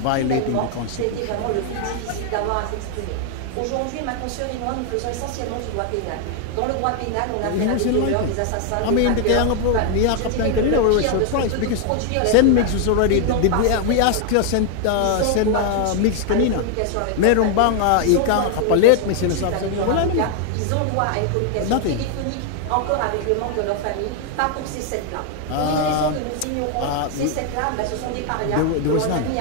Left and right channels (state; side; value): different; both; correlation 0.00